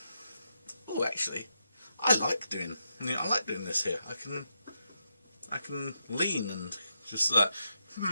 actually, I like doing this here. I can lean and just like,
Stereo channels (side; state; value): both; inverted; correlation -0.84